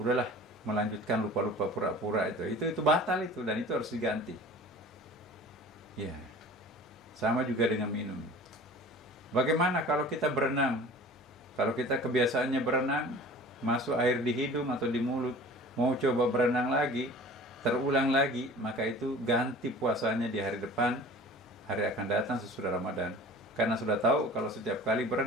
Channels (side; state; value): both; normal; correlation 0.42